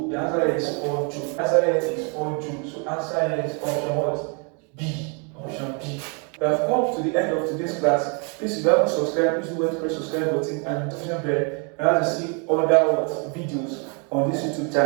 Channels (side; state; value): left; quieter; 36.7 dB